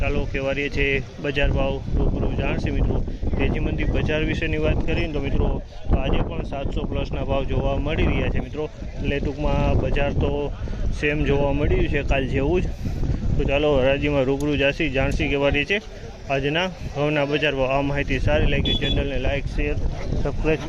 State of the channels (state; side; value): identical; both; correlation 1.00